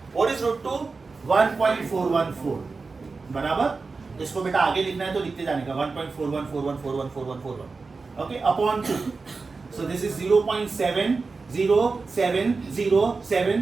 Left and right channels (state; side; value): quieter; left; 4.2 dB